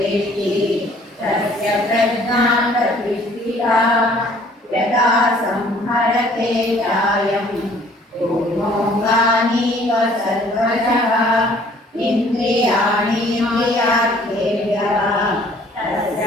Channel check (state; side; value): normal; both; correlation 0.57